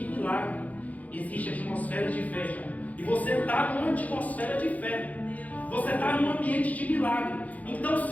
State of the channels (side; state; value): right; late; 0.075 ms